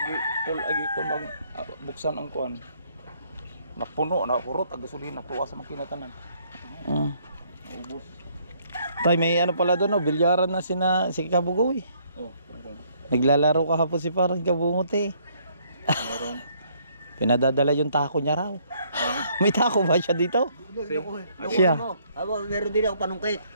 full agi ko mag buksan ang kuan. Napuno na kurot ang gasolina tuwa sa makinatanan. Ubos. Tay, may pala doon, bilyaran na si Kabugoy. Naglalaro kahapon si parang Kabungot eh. Pinadadala yung tako niya raw. May tako ba siya dito? Siya. Meron din ako panungkit.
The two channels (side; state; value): both; inverted; correlation -0.66